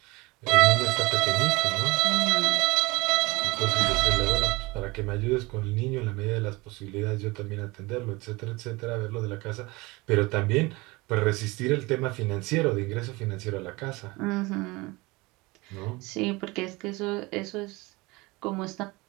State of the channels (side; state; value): left; quieter; 23.4 dB